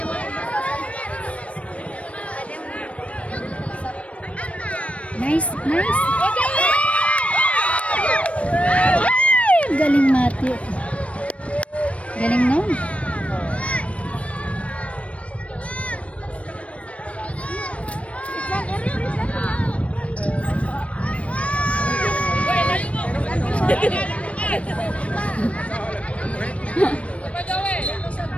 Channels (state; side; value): late; right; 0.063 ms